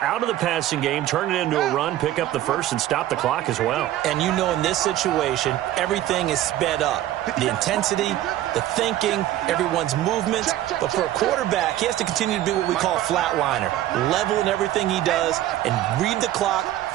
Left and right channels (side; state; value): left; quieter; 13.6 dB